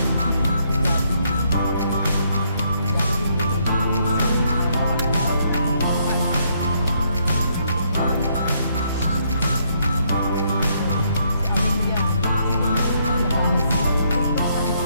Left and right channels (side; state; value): both; inverted; correlation -0.72